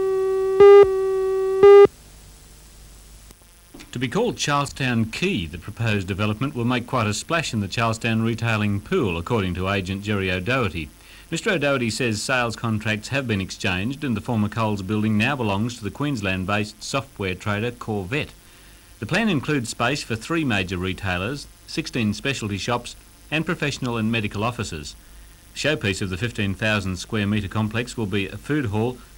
To be called Charlestown Quay, the proposed development will make quite a splash in the Charlestown retailing pool, according to agent Jerry O'Doherty. Mr O'Doherty says sales contracts have been exchanged and the former Coles building now belongs to the Queensland-based software trader Corvette. The plan includes space for 3 major retailers, 16 specialty shops and professional and medical offices. The showpiece of the 15,000 square metre complex will be a food hall,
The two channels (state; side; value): identical; both; correlation 1.00